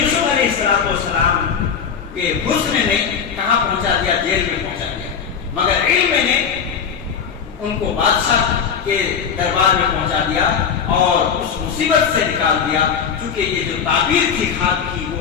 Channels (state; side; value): quieter; right; 7.0 dB